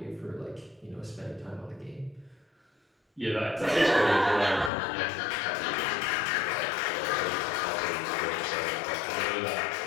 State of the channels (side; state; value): right; drops out; at 4.7 s